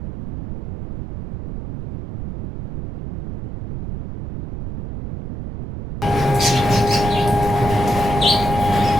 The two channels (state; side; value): noise; right; rumble, 8 dB below the sound